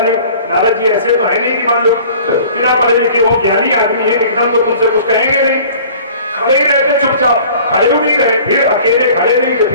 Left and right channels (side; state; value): both; inverted; correlation -0.47